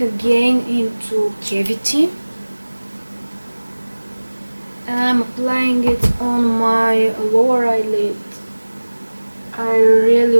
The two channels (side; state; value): both; inverted; correlation -1.00